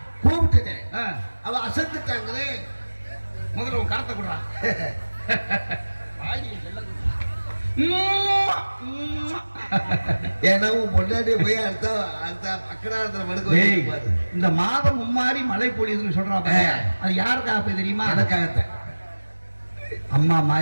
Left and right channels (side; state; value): both; inverted; correlation -1.00